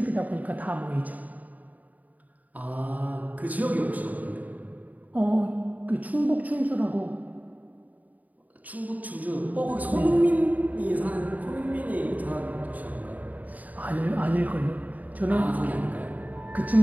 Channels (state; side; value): late; left; 0.076 ms